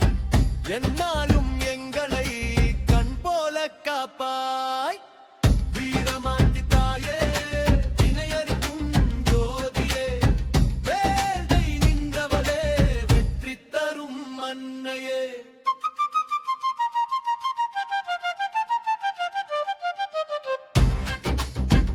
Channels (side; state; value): both; identical; correlation 1.00